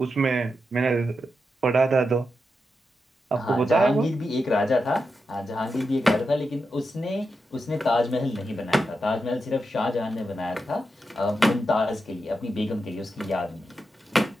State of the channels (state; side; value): normal; both; correlation 0.87